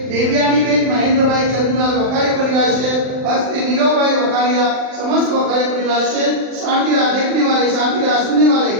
देवयानी बेन महेंद्र भाई चंद्रलाल वखारिया परिवार से हस्ते नीरव भाई वखारिया समस्त वखारिया परिवार से शांति राह देखने वाले, शांति राह सुनने वाले,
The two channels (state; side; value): late; left; 39 ms